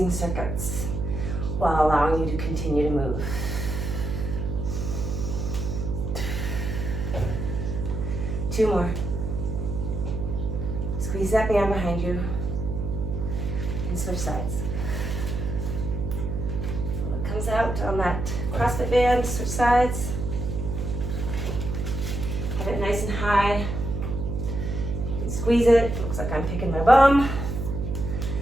circuits while allowing you to continue to move. Two more. Squeeze that band behind you and switch sides. It comes out on that CrossFit band, switch sides. Have it nice and high. You can squeeze it. It looks like I'm picking my bum.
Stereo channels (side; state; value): right; noise; hum, 3 dB below the sound